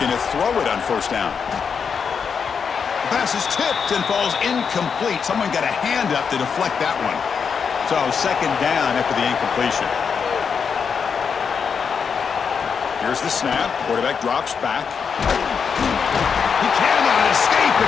to throw it on first down. The pass is tipped and falls incomplete. Someone got a hand up to deflect that one. So second down after the incompletion. Here's the snap. Quarterback drops back. He cannot escape.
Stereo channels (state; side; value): quieter; right; 6.3 dB